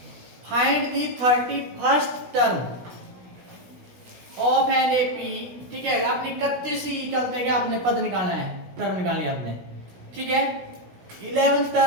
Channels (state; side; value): late; left; 16 ms